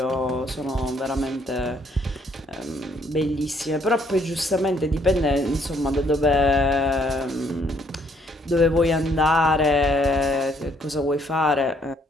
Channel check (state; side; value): normal; both; correlation 0.67